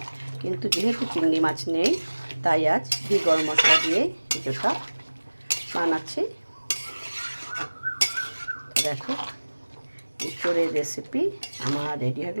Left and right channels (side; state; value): both; inverted; correlation -1.00